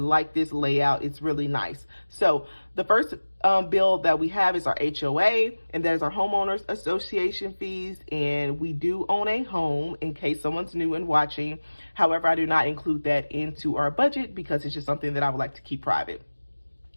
this layout. It's really nice. So the first bill that we have is our HOA, and that is our homeowners association fees. And we do own a home, in case someone's new and watching. However, I do not include that into our budget because it's just something that I would like to keep private.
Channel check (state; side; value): inverted; both; correlation -1.00